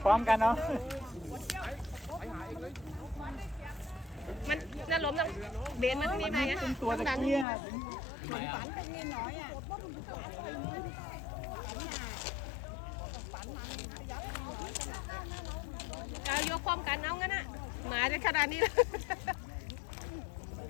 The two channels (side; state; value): right; drops out; at 7.5 s